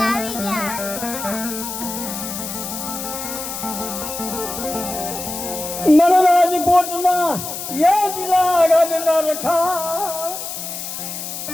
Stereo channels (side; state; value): left; noise; hiss, 7 dB below the sound